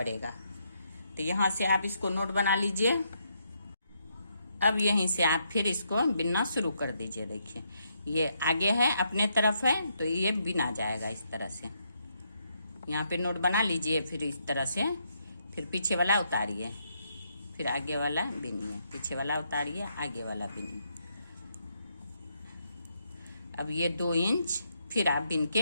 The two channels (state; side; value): inverted; both; correlation -0.77